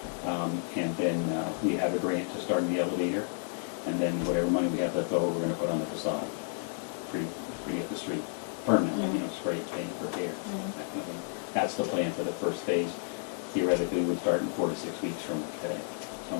And then we have a grant to start in the elevator, and then whatever money we have left over, we're gonna put on the facade. Pretty at the street, permanently, you know, spray, paint, repair, that kind of thing. That's the plan for the first phase. Theoretically, we'll start in 4 to 6 weeks from today,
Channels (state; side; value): silent; right; 57 dB below the other